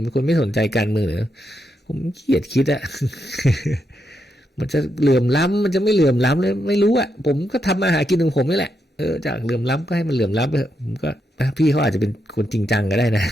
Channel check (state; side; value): normal; both; correlation 0.82